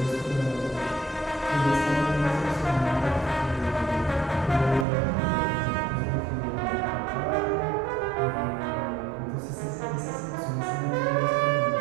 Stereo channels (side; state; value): left; drops out; at 4.9 s